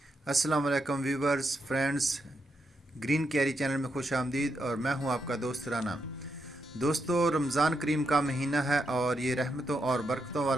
अस्सलाम वालेकुम viewers, friends, green carry channel में खुश आमदीद। और मैं हूं आपका दोस्त राना। दोस्तों, रमज़ान करीम का महीना है और ये रहमतों और बरकतों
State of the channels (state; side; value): normal; both; correlation 0.82